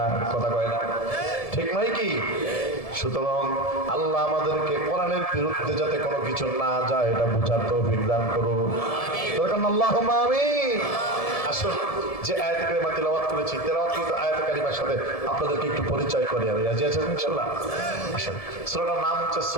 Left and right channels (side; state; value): right; late; 1.7 ms